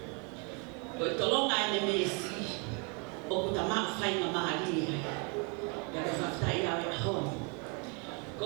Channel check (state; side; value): quieter; left; 34.3 dB